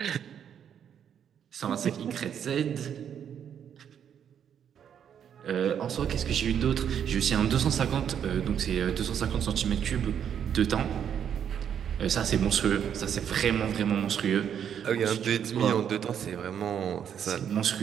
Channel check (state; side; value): quieter; left; 8.7 dB